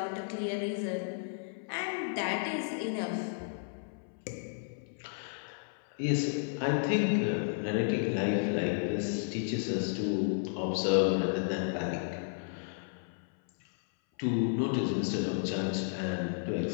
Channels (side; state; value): right; silent; 56 dB below the other